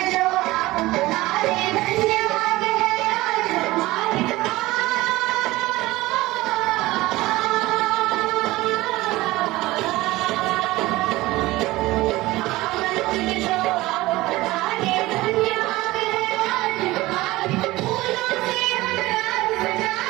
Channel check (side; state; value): left; quieter; 18.9 dB